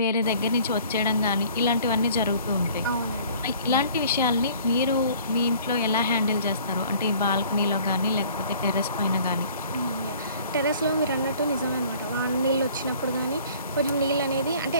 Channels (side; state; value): both; inverted; correlation -0.53